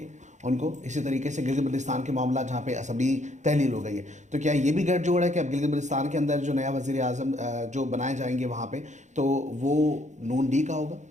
ان کو. اسی طریقے سے گلگت بلتستان کے معاملہ جہاں پہ اسمبلی تحلیل ہو گئی ہے, تو کیا یہ بھی گٹھ جوڑ ہے کہ اب گلگت بلتستان کے اندر جو نیا وزیر اعظم جو بنائے جائیں گے وہاں پہ تو وہ نون لیگ کا ہوگا؟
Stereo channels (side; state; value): left; late; 0.35 ms